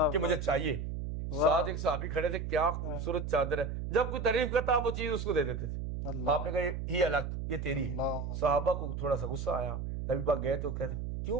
کہ مجھے چاہیے. ساتھ ایک صحابی کھڑے تھے، کیا خوبصورت چادر ہے. جب کوئی تعریف کرتا وہ چیز اس کو دے دیتے تھے. آپ نے کہا یہ الگ، یہ تیری ہے. صحابہ کو تھوڑا سا غصہ آیا. نبی پاک گئے تو کہتے کیوں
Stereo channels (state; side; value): noise; right; hum, 4 dB below the sound